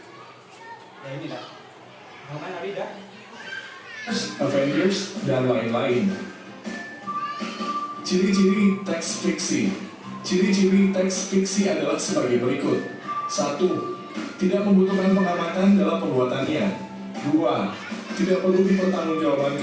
ya ini lah, kan tadi dah Avengers, dan lain-lain. Ciri-ciri teks fiksi. Ciri-ciri teks fiksi adalah sebagai berikut. 1. Tidak membutuhkan pengamatan dalam pembuatannya. 2. Tidak perlu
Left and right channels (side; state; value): both; identical; correlation 1.00